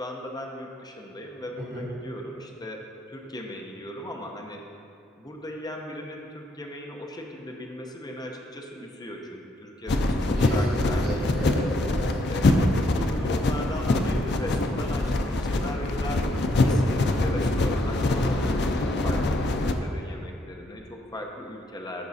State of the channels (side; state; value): both; normal; correlation 0.74